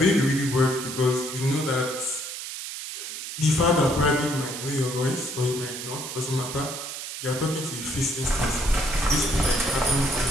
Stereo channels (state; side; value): noise; right; hiss, 8 dB below the sound